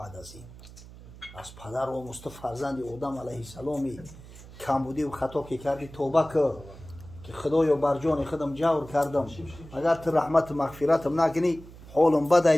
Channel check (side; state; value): right; noise; hum, 18 dB below the sound